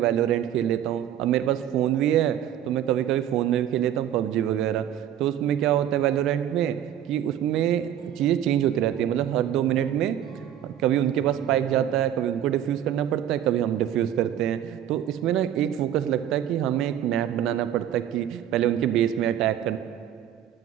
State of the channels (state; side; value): quieter; left; 10.7 dB